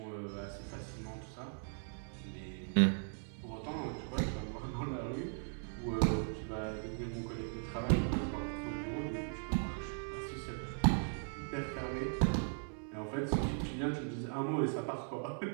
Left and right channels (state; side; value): silent; left; 52 dB below the other